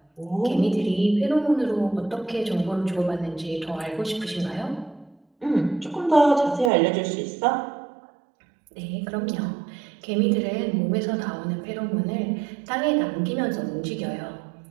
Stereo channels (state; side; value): drops out; left; at 6.7 s